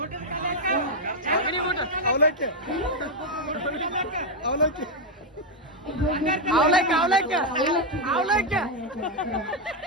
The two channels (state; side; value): normal; both; correlation 0.02